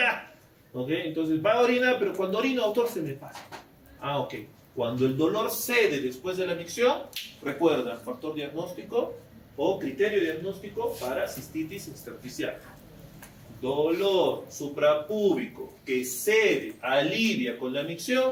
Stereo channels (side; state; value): both; identical; correlation 1.00